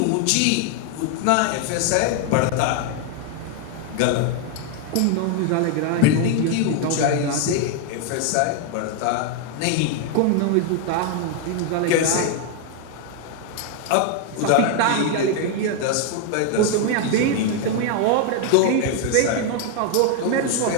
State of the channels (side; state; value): both; different; correlation 0.01